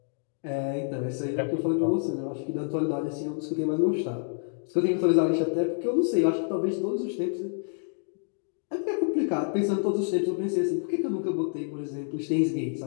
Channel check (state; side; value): silent; right; 59 dB below the other